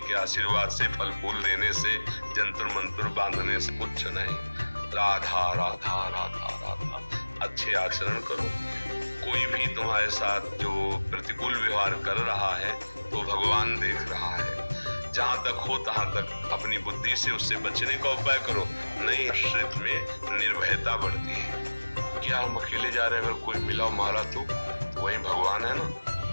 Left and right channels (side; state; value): both; inverted; correlation -1.00